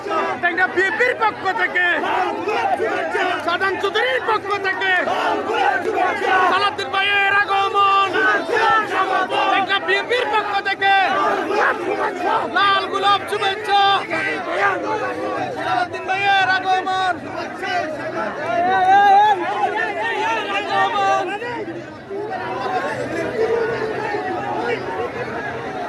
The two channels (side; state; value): both; identical; correlation 1.00